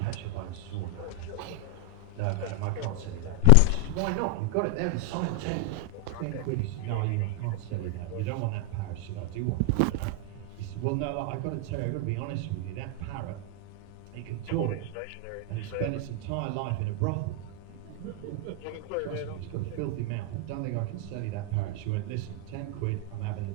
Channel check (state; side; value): different; both; correlation 0.00